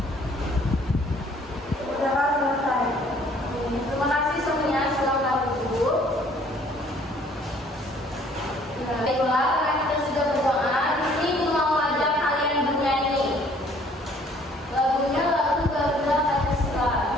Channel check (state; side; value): normal; both; correlation 0.58